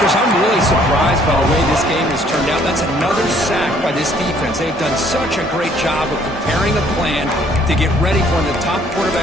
I'm really surprised by the way this game has turned out. That's another sack by this defense. They've done such a great job of preparing a plan to get ready for one of the top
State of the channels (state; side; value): normal; both; correlation 0.61